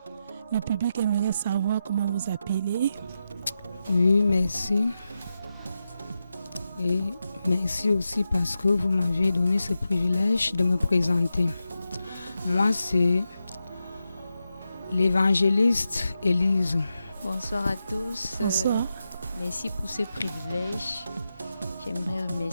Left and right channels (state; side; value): inverted; both; correlation -0.89